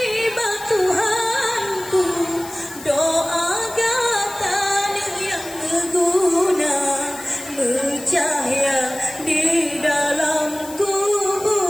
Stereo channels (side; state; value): left; noise; hiss, 16 dB below the sound